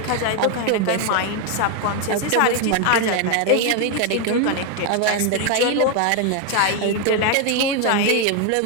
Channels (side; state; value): both; different; correlation 0.01